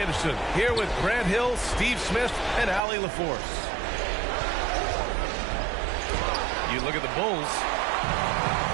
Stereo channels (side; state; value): left; drops out; at 2.8 s